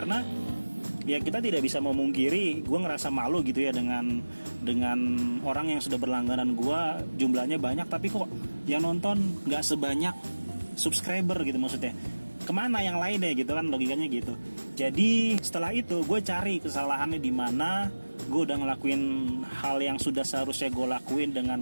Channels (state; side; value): inverted; both; correlation -1.00